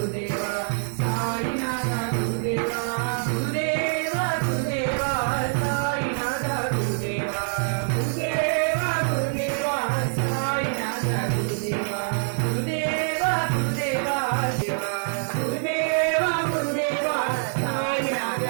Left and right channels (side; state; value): left; silent; digital silence